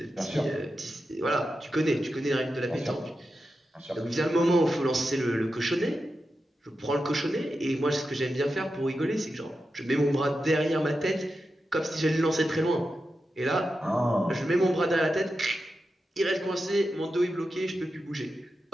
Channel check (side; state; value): both; normal; correlation 0.90